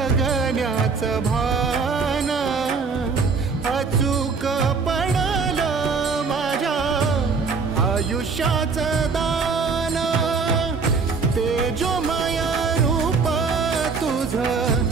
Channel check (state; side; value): quieter; left; 4.9 dB